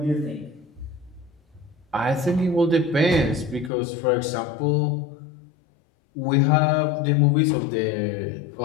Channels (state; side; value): drops out; right; at 3.7 s